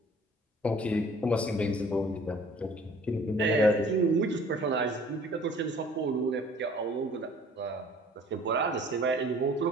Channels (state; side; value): normal; both; correlation 0.52